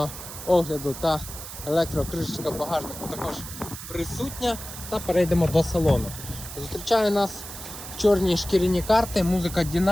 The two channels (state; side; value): noise; right; hiss, 11 dB below the sound